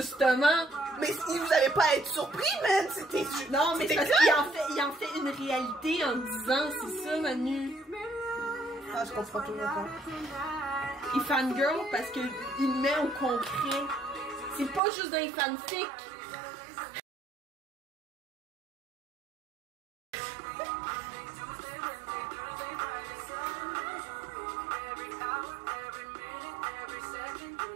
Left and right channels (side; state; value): left; drops out; at 14.8 s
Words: Mais si vous avez pas à être surpris, man! C'était... Non, mais c'est parce qu'il en fait une réalité en disant, c'est ça, Manu. Ah, je comprends toujours pas. Il fangirl parce qu'il met au concret. C'est pas juste des fanfics.